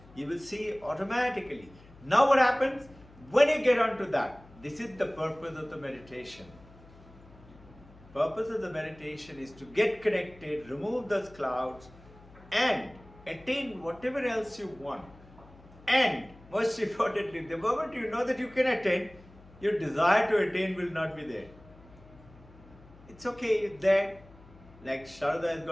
you will see automatically. Now what happens? When you get onto that, this is the purpose of the meditation. Purpose of the meditation is to get connected, remove those clouds, and attain whatever else you want. And most importantly, the moment you know that you can attain, your desire to attain will not be there. It's okay, it's there. Like Sharada has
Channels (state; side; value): noise; left; hum, 23 dB below the sound